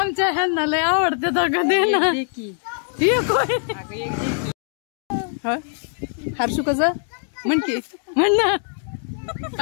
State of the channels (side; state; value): right; silent; 61 dB below the other